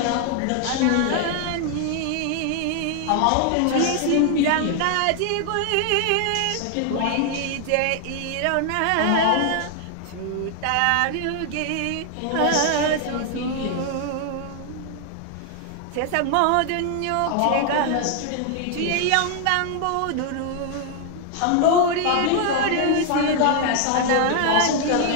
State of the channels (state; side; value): different; both; correlation 0.00